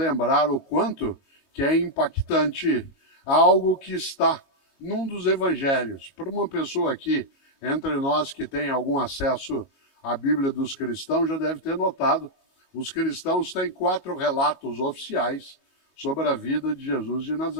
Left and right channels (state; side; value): late; right; 22 ms